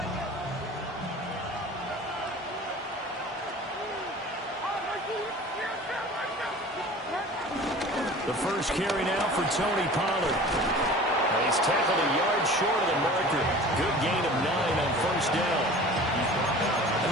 The first carry now for Tony Pollard. And he's tackled a yard short of the marker. Good gain of 9 on first down. A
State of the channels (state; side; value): normal; both; correlation 0.42